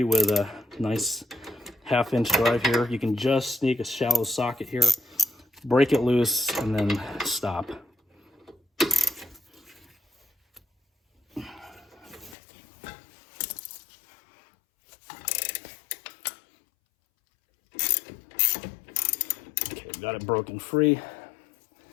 with a nice 1/2-inch drive here. You can just sneak a shallow socket here, break it loose, and then stop. Okay, got it broken free.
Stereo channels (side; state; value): right; drops out; at 12.4 s